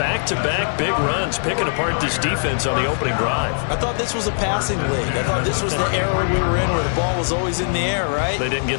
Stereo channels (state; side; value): silent; right; digital silence